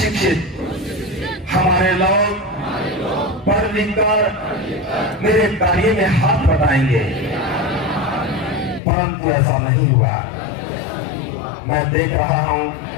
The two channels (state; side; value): drops out; right; at 8.8 s